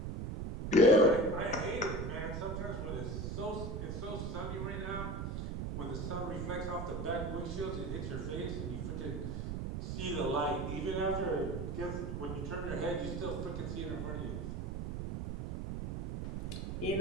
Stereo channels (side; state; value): right; noise; rumble, 4 dB below the sound